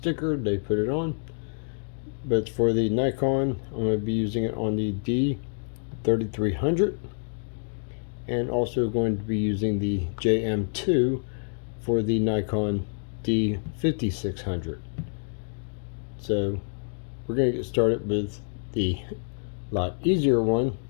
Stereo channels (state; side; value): silent; right; digital silence